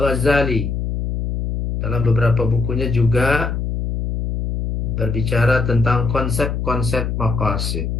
dalam beberapa bukunya juga berbicara tentang konsep-konsep maqasid.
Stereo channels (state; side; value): noise; left; hum, 2 dB below the sound